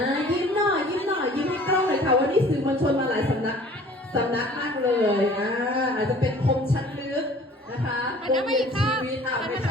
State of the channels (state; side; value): normal; both; correlation 0.50